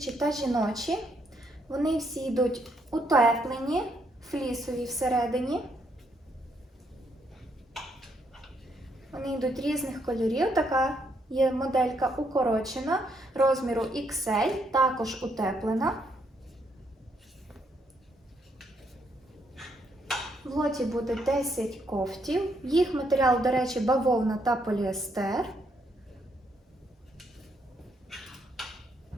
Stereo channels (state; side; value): normal; both; correlation 0.74